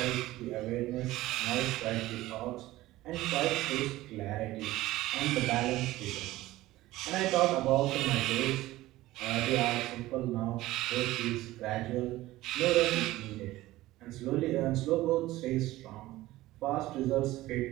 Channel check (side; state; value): left; quieter; 17.0 dB